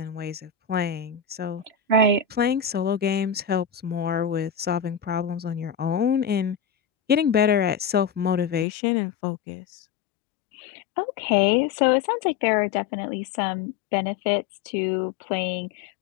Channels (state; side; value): drops out; right; at 8.7 s